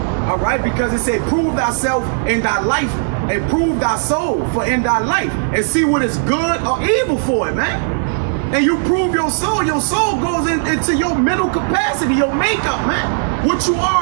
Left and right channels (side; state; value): left; silent; digital silence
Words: All right, because it said, prove thyself in thy life and prove thy soul for in thy life and see what is good or evil for it, man. And you prove your soul goes into your mental capacity, your makeup, man. What you